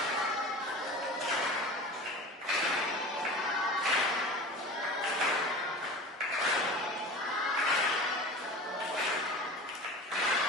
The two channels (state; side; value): normal; both; correlation 0.35